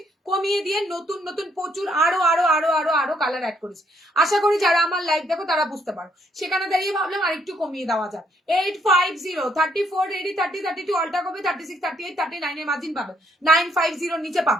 কমিয়ে দিয়ে নতুন নতুন প্রচুর আরো আরো আরো আরো আরো কালার অ্যাড করেছি। আশা করি যারা আমার লাইভ দেখো তারা বুঝতে পারো, সেখানে দাঁড়িয়ে ভাবলাম আর একটু কমিয়ে দেওয়া যায়। 850, 34 রেডি, 30-32 অল্টা করবে, 36-38-39 এর মার্জিন পাবে, 950 নিচে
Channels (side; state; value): both; normal; correlation 0.70